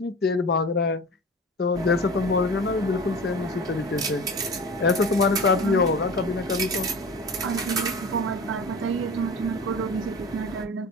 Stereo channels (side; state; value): both; normal; correlation 0.34